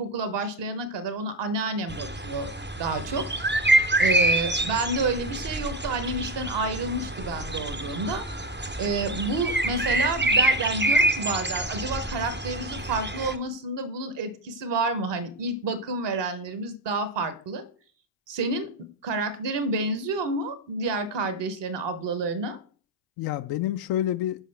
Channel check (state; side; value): normal; both; correlation 0.15